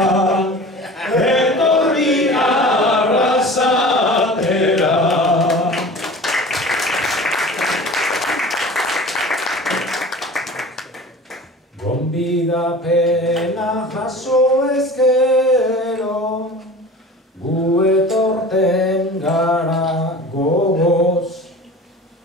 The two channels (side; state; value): both; normal; correlation 0.39